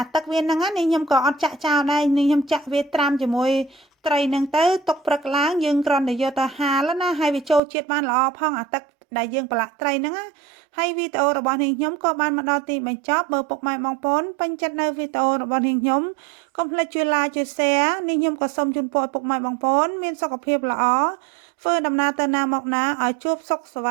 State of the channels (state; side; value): drops out; left; at 7.6 s